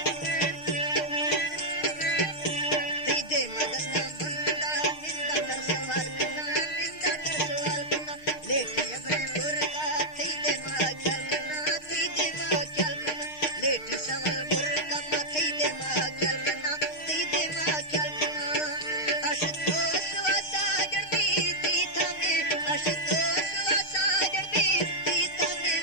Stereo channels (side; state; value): right; late; 6.5 ms